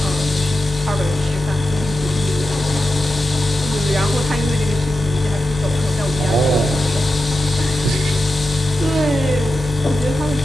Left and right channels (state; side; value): normal; both; correlation 0.90